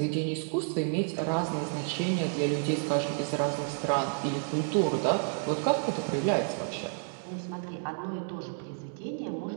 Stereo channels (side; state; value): left; silent; 57 dB below the other